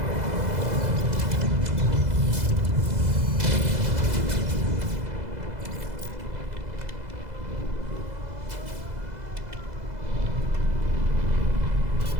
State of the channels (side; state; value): left; late; 2.0 ms